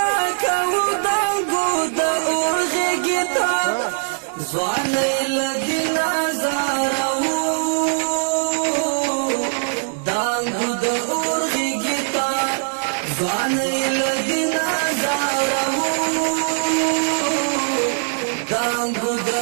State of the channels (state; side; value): silent; left; 57 dB below the other